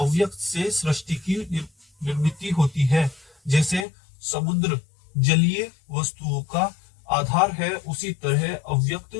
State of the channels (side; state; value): right; drops out; at 3.9 s